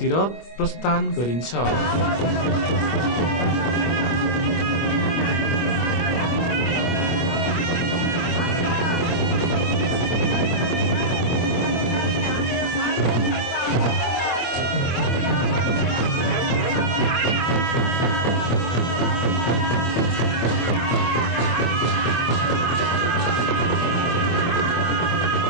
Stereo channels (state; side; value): late; right; 25 ms